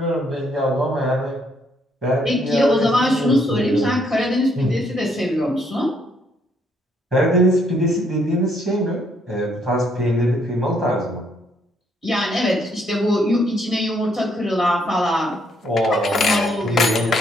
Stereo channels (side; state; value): both; normal; correlation 0.70